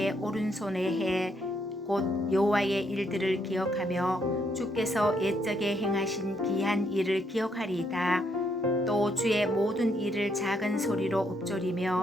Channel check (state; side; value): normal; both; correlation 0.74